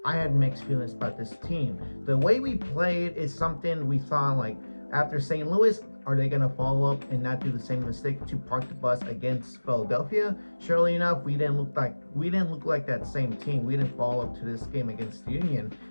I had mixed feelings about this team. The way we played is something we thought, like, after St. Louis, are they going to follow up and not do the same mistake to park the bus against Philadelphia? Surely enough, we didn't look like that same team. We didn't follow up to this game against the Union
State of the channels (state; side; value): inverted; both; correlation -1.00